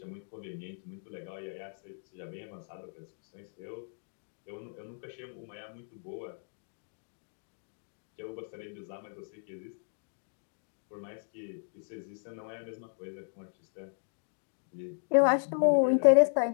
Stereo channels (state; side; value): silent; right; digital silence